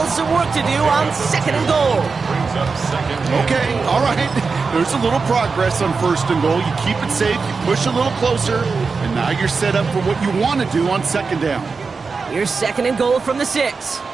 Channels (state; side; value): quieter; left; 4.7 dB